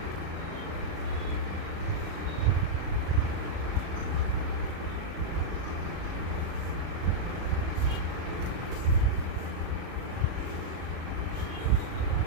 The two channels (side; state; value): left; late; 37 ms